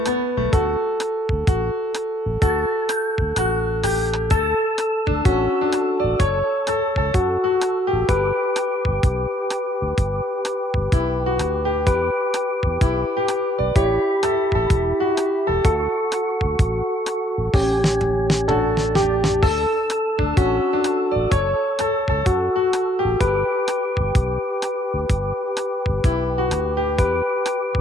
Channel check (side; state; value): both; normal; correlation 0.69